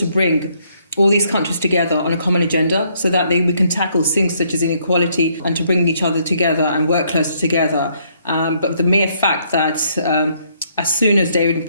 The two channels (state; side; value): inverted; both; correlation -0.70